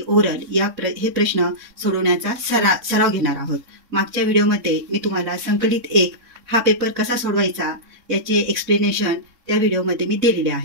ओरल हे प्रश्न सोडवण्याचा सराव घेणार आहोत। मागच्या व्हिडिओमध्ये मी तुम्हाला संकलित 1 हा पेपर कसा सोडवायचा याचे एक्सप्लेनेशन त्या व्हिडिओमध्ये मी दिलेले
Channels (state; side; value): late; left; 3.6 ms